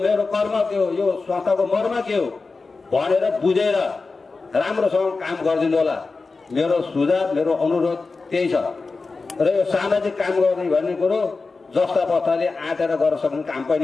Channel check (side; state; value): right; quieter; 4.0 dB